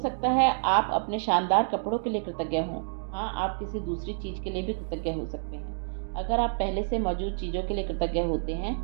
है आप अपने शानदार कपड़ों के लिए कृतज्ञ हों। हाँ, आप किसी दूसरी चीज़ के लिए भी कृतज्ञ हो सकते हैं। अगर आप पहले से मौजूद चीज़ों के लिए कृतज्ञ होते हैं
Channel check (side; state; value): left; silent; digital silence